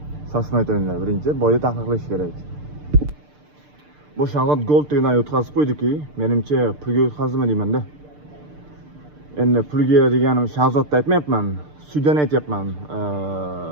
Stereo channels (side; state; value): left; late; 6.7 ms